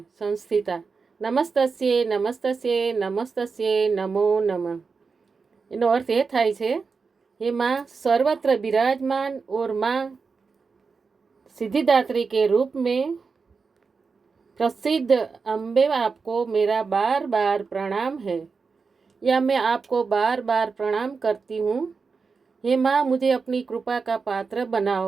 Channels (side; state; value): left; quieter; 4.9 dB